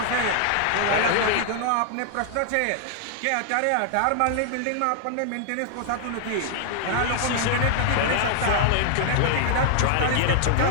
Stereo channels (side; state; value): both; different; correlation 0.00